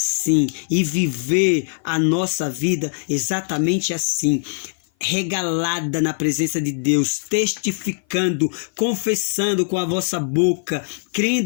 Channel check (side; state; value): right; silent; 57 dB below the other